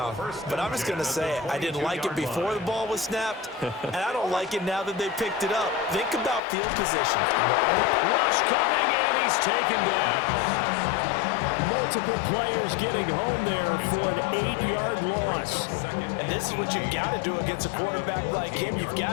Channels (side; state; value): right; drops out; at 6.4 s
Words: but I'm just going to say it. I didn't like it before the ball was snapped, and I don't like it now that they picked it up. Think about field position. Rush coming, and he's taken down. Multiple players getting home there for an 8-yard loss. And this is what you've got to do against a quarterback like him. You've